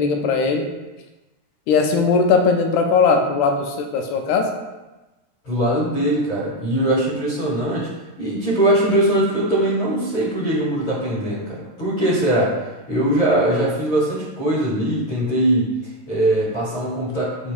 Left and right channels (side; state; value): right; late; 13 ms